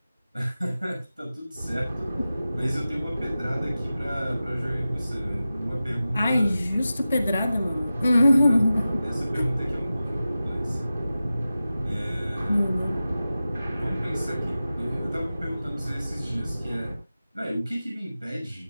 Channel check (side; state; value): both; inverted; correlation -0.94